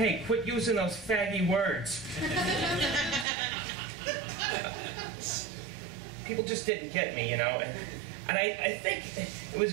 quit using those faggy words. People just didn't get me, you know, and I think it was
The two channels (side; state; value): left; drops out; at 3.2 s